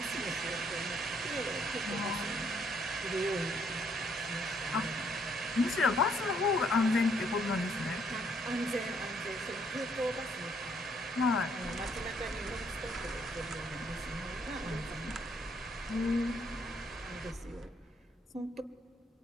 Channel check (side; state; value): both; normal; correlation 0.68